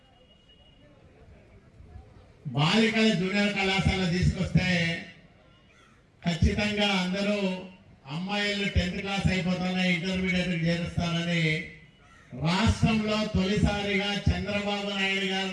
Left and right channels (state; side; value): identical; both; correlation 1.00